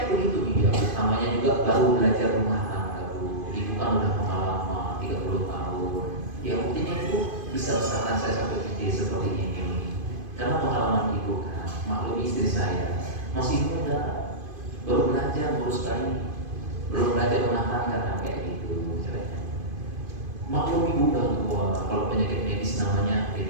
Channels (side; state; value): left; late; 2.5 ms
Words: begitu dia. Namanya juga baru belajar rumah tangga bu. Ibu kan udah pengalaman 30 tahun. Ya mungkin ibu bisa besarkan saya sampai gede seperti ini. Karena pengalaman ibu kan, maklum istri saya masih muda, baru belajar ngurus bayi, belum belajar rumah tangga kan kayak gitu. Maklum ibu udah tua. Kalau penyakit medis namanya